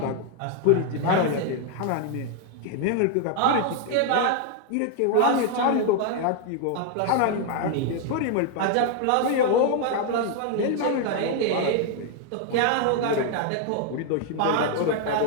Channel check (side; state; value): both; different; correlation 0.00